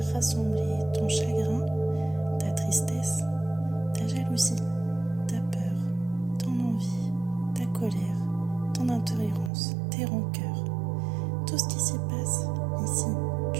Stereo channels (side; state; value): left; drops out; at 9.5 s